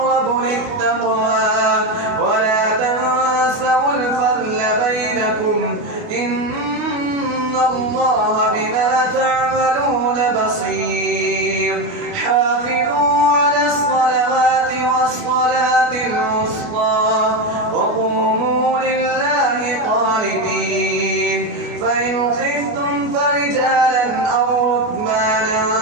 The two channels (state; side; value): late; left; 29 ms